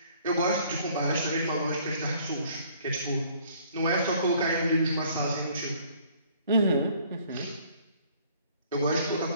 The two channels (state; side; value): inverted; both; correlation -0.59